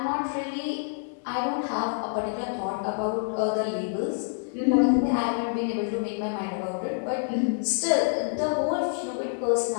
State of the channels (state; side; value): silent; right; digital silence